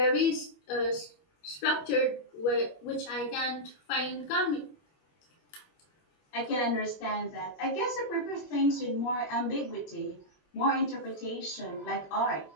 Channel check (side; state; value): right; late; 21 ms